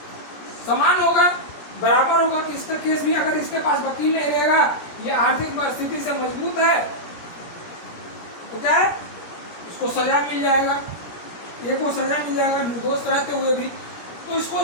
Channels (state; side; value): late; right; 17 ms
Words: समान होगा, बराबर होगा कि इसका केस भी अगर इसके पास वकील नहीं रहेगा, ये आर्थिक स्थिति से मजबूत है, तो क्या है इसको सजा मिल जाएगा, ये को सजा मिल जाएगा निर्दोष रहते हुए भी। तो इसको